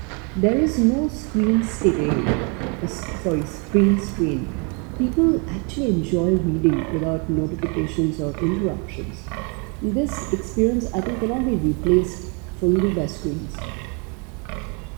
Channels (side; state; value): left; quieter; 34.5 dB